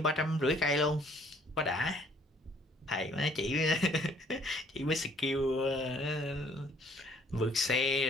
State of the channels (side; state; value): both; normal; correlation 0.60